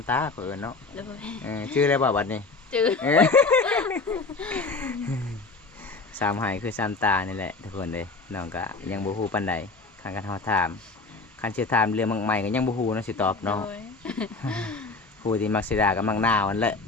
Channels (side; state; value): right; quieter; 3.9 dB